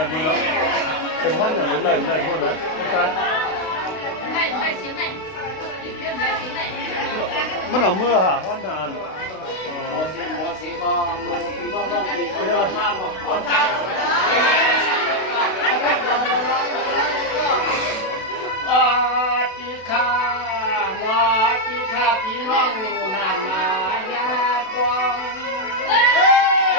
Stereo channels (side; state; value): right; late; 32 ms